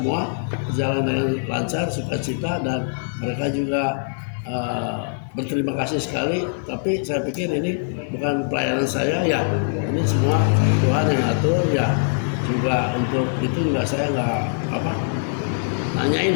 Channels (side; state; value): right; silent; digital silence